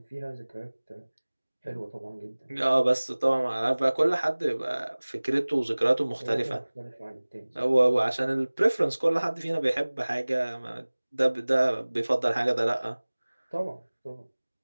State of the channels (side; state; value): both; inverted; correlation -1.00